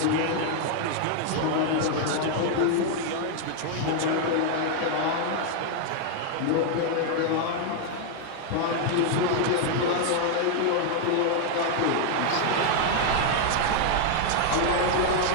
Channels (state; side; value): different; both; correlation 0.00